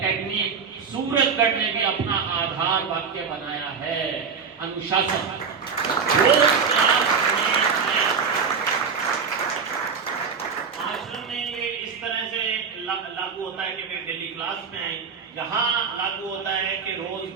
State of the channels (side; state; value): left; quieter; 5.9 dB